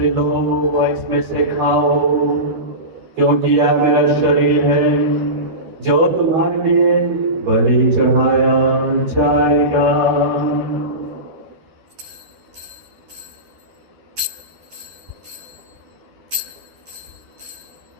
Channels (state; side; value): late; left; 13 ms